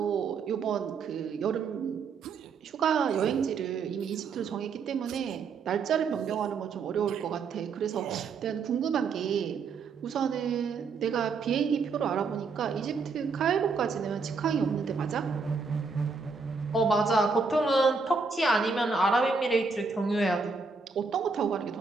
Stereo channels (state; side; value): quieter; left; 4.8 dB